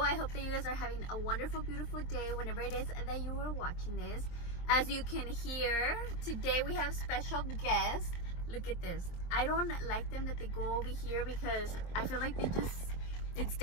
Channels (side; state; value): right; late; 23 ms